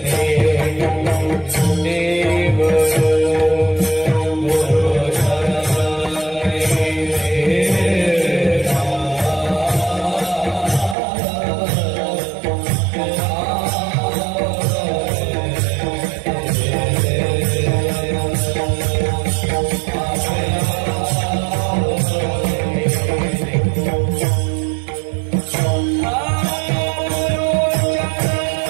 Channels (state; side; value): drops out; left; at 11.0 s